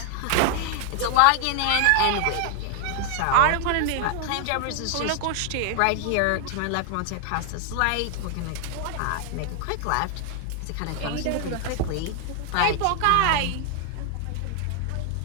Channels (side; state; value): both; different; correlation 0.00